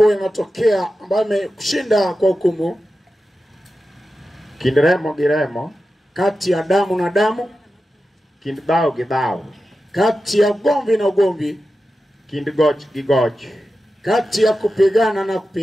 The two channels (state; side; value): normal; both; correlation 0.92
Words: linatokea ambayo imekushinda kwa hukumu. Kind remo gi remo. Kati ya damu na damu. Kind dhao gi dhao. Kati ya ugomvi na ugomvi. Kind goch gi goch. Kati ya kupigana na